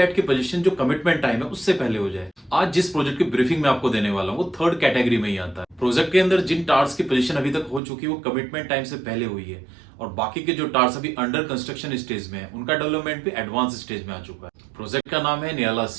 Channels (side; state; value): left; drops out; at 7.8 s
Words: की पोजीशन जो कमिटमेंट टाइम है उससे पहले हो जाए। आज जिस प्रोजेक्ट की ब्रीफिंग मैं आपको देने वाला हूँ वो थर्ड कैटेगरी में ही आता है। प्रोजेक्ट के अंदर जिन टार्स की पोजीशन अभी तक हो चुकी है वो कमिटमेंट टाइम से पहले हुई है, और बाकी के जो टार्स अभी अंडर कंस्ट्रक्शन स्टेज में है उनका डेवलपमेंट भी एडवांस स्टेज में आ चुका है। प्रोजेक्ट का नाम है नियाला